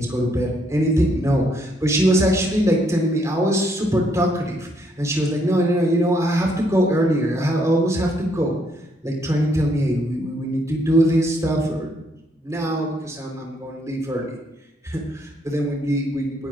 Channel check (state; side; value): normal; both; correlation 0.71